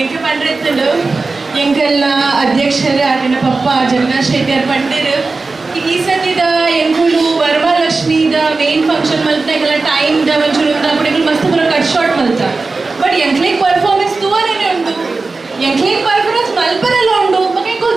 ಎಂಕ ಪಂಡ್ರೆತ್ತುಂಡು ಎಂಕಲ್ನ ಅಧ್ಯಕ್ಷರು ಆಟಿನ ಪಪ್ಪ ಜಗನ್ನಾಥ್ ಶೆಟ್ಟಿ ಅವ್ರು ಪಂಡಿರು ಈ ಸತಿದ ಎಂಕುಲು ವರಮಹಾಲಕ್ಷ್ಮಿದ ಮೇನ್ ಫಂಕ್ಷನ್ ಮಲ್ತ ಎಂಕಲ್ಲ ಟೈಮ್ದ ಒಂಚೂರು ಅప్పుడు ಮಸ್ತ್ ಪೂರ ಕಟ್ ಶಾರ್ಟ್ ಮಲ್ತ ಬಟ್ ಎಂಕ್ಲೇಕ್ ಪರ್ಫಾರ್ಮೆನ್ಸ್ ತೂವರೇನೆ ಉಂಟು ಎಂಕ್ಲೇಕ್ ಪರ್ಫಾರ್ಮೆನ್ಸ್ ಮಲ್ಪರೆಲ್ಲ ಉಂಡು ಮಗ ಎಂಕುಲು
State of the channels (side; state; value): left; quieter; 3.8 dB